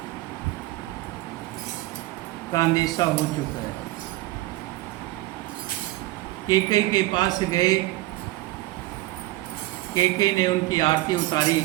का अंदेशा हो चुका है। कैकेयी के पास गए, कैकेयी ने उनकी आरती उतारी,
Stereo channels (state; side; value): quieter; left; 17.8 dB